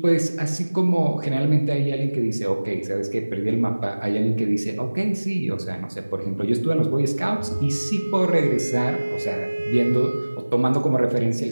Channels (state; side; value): inverted; both; correlation -1.00